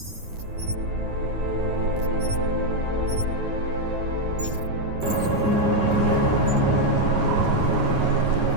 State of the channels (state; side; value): late; left; 9.6 ms